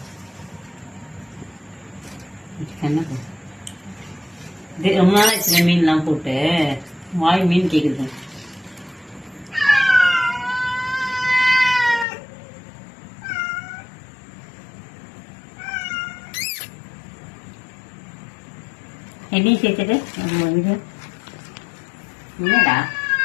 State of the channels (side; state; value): right; drops out; at 12.1 s